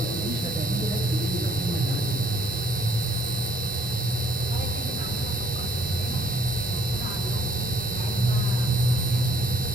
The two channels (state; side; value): normal; both; correlation 0.62